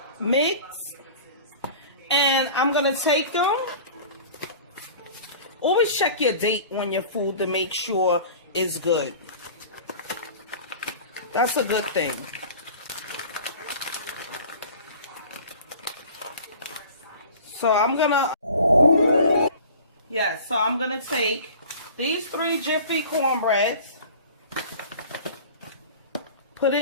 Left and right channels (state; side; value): inverted; both; correlation -0.42